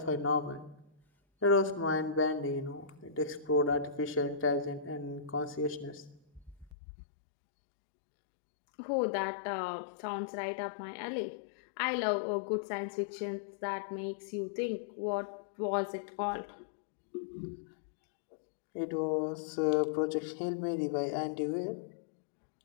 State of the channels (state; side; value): drops out; right; at 6.7 s